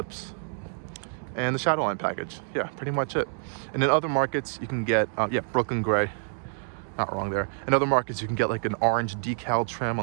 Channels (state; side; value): silent; left; digital silence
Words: and the Shadowline package. Yeah, pretty much it. And in other markets, you can get, yeah, Brooklyn Gray. Not wrong there. In other markets, you can get like an orange decal trim